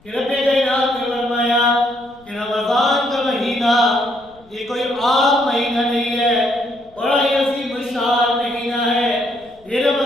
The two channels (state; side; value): noise; left; rumble, 29 dB below the sound